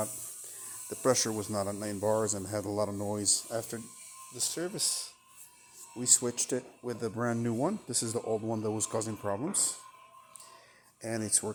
The pressure was not at 9 bars and had a lot of noise. After the service, we switched it with the brand new one. This is the old one that was causing problems, and it's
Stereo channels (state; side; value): identical; both; correlation 1.00